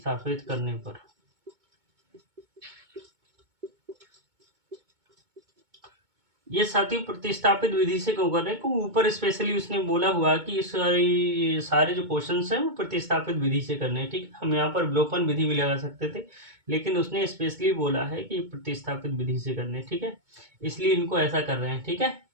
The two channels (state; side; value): late; left; 2.2 ms